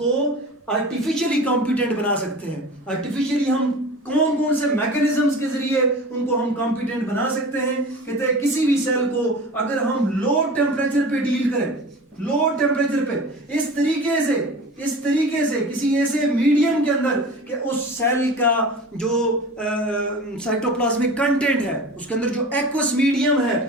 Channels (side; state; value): both; normal; correlation 0.36